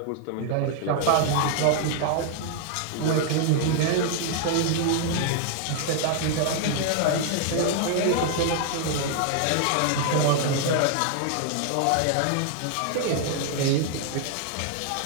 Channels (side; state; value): both; different; correlation 0.00